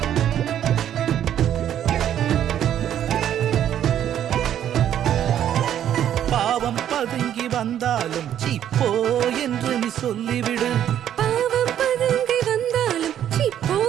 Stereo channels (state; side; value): quieter; left; 10.5 dB